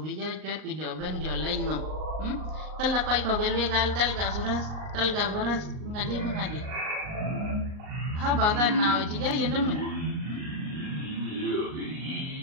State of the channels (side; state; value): left; late; 39 ms